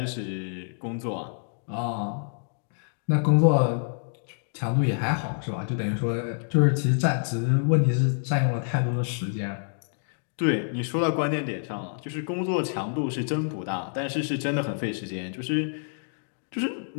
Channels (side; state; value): right; silent; digital silence